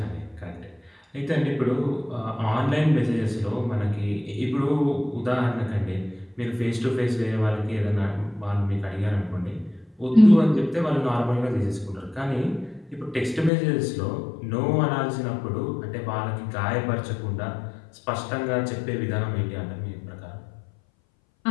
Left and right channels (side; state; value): right; drops out; at 13.5 s